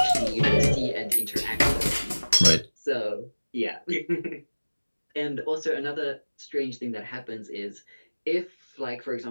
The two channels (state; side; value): inverted; both; correlation -1.00